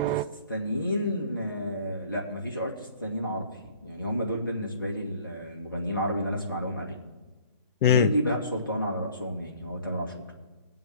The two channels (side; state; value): both; inverted; correlation -0.55